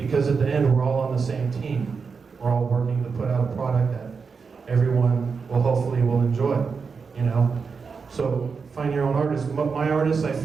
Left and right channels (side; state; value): left; quieter; 5.3 dB